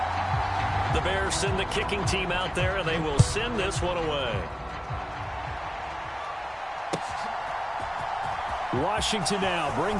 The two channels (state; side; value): identical; both; correlation 1.00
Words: The Bears send the kicking team out there, and they will send this one away. Washington now